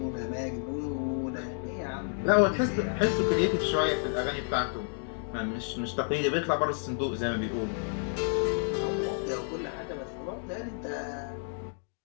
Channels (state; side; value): silent; right; 57 dB below the other